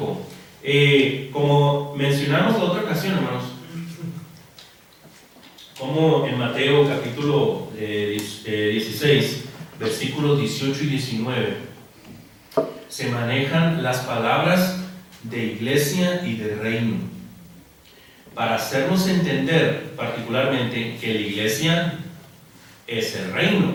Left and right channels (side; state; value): both; identical; correlation 1.00